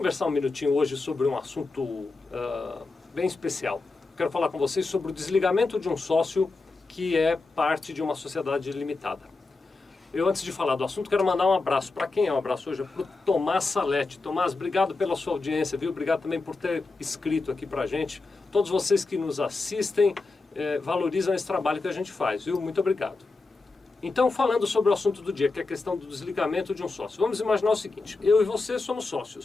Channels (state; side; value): quieter; right; 3.6 dB